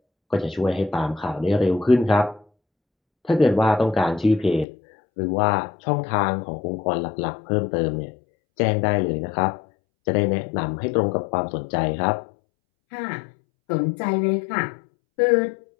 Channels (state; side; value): drops out; right; at 4.7 s